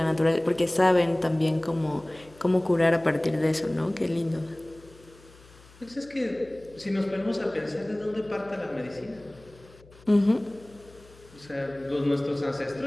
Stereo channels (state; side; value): noise; left; hum, 25 dB below the sound